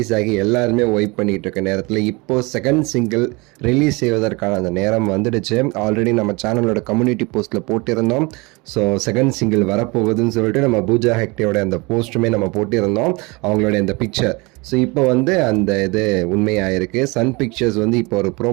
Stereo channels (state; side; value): quieter; left; 26.3 dB